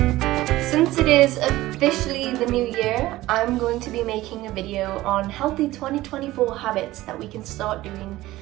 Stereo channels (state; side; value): quieter; left; 17.0 dB